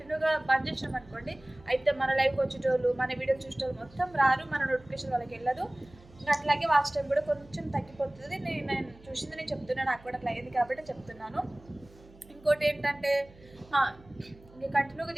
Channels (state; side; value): noise; right; hum, 24 dB below the sound